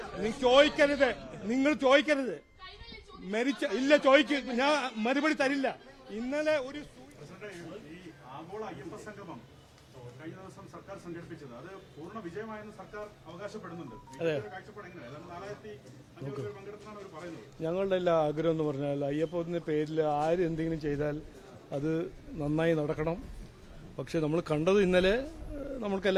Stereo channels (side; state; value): both; identical; correlation 1.00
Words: നിങ്ങൾ ചോദിക്കരുത്. ഇല്ല, ഞാൻ മറുപടി തരില്ല. ഇന്നലെ ഒരു ആഗോള അയ്യപ്പ സംഗമം കഴിഞ്ഞ ദിവസം സർക്കാർ സംഘടിപ്പിച്ചത് അത് പൂർണ്ണ വിജയമായെന്ന് സർക്കാർ അവകാശപ്പെടുന്നുണ്ട്. ഞങ്ങളുടെ എല്ലാ ആഗ്രഹം എന്ന് പറഞ്ഞാൽ അയ്യപ്പത്തിന്റെ പേരിൽ ആര് എന്തെങ്കിലും ചെയ്താൽ അത് നന്നായി നടക്കണം. പക്ഷെ നമ്മൾ കണ്ടത് ഇന്നലെ നമ്മൾക്ക്